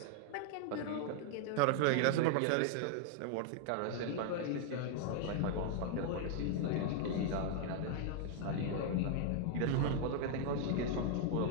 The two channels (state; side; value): different; both; correlation 0.00